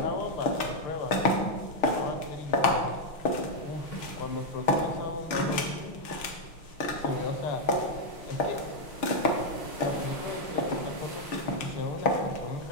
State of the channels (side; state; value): right; late; 6.4 ms